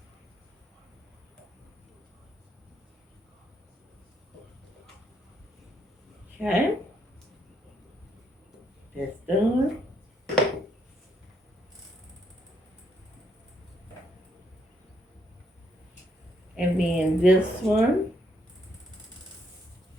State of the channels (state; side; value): normal; both; correlation 0.74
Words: Okay, that's done. And then this one